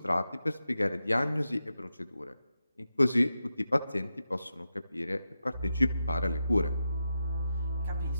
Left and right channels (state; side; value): inverted; both; correlation -0.88